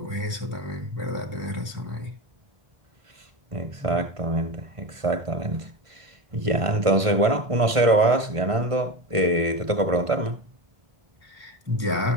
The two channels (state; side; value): late; left; 1.5 ms